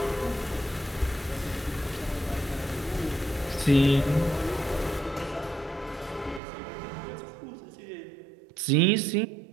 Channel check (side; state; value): left; drops out; at 6.4 s